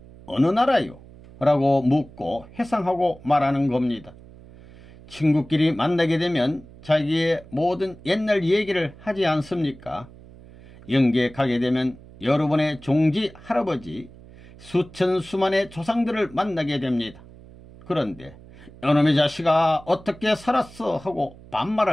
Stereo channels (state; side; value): noise; right; hum, 21 dB below the sound